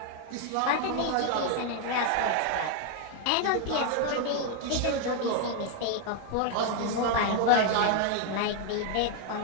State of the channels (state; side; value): different; both; correlation 0.01